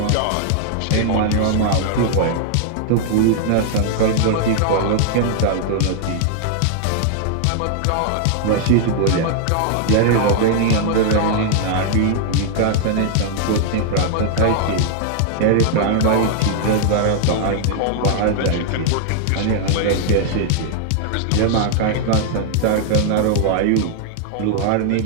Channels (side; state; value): both; different; correlation 0.00